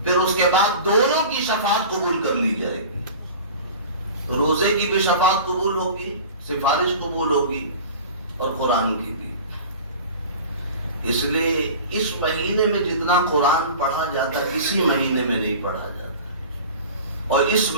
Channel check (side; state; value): both; inverted; correlation -0.38